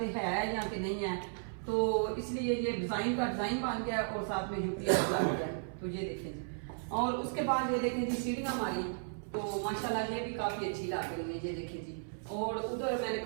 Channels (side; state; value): left; silent; 54 dB below the other